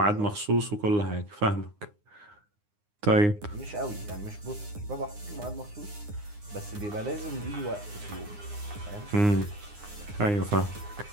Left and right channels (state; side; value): late; left; 9.7 ms